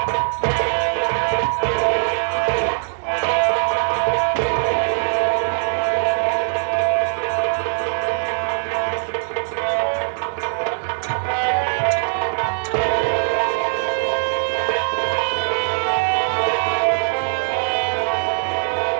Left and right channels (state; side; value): silent; left; digital silence